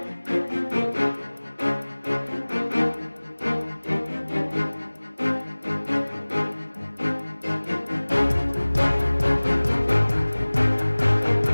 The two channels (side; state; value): both; inverted; correlation -1.00